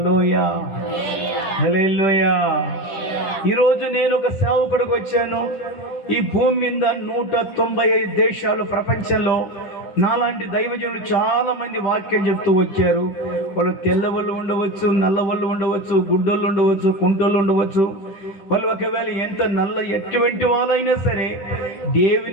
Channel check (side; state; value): right; late; 10 ms